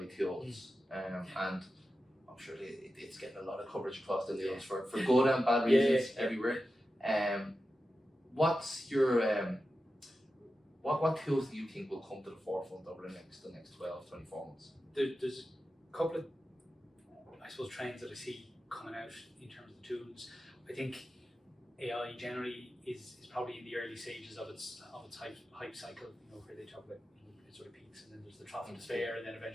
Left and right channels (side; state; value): both; normal; correlation 0.92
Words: tools, and I'm sure it's getting a lot of coverage across the news for good and bad reasons everywhere. What's your what tools do you think will come to the forefront over the next 12, 24 months? There's a couple of, I suppose, trends that I see coming out in terms of the tools. I think AI generally is probably in the early stages of its hype cycle, where they talk about it sort of peaks and then there's the trough of despair and then